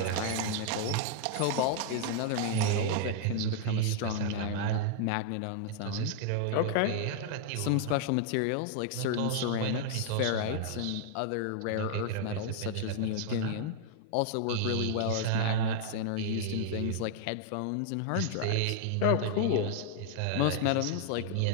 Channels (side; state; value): both; different; correlation 0.00